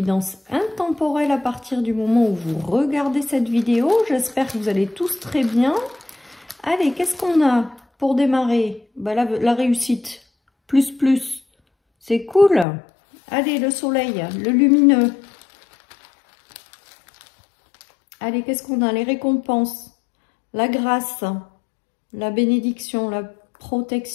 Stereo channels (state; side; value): drops out; right; at 12.7 s